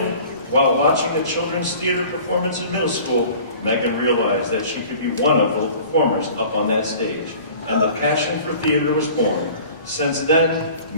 While watching a children's theater performance in middle school, Megan realized that she could be one of the performers up on that stage, and the passion for theater was born. Since then,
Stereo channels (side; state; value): both; inverted; correlation -0.46